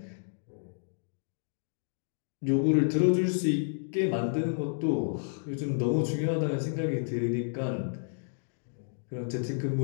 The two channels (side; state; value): right; silent; digital silence